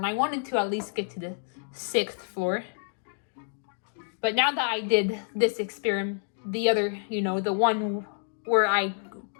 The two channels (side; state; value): right; silent; digital silence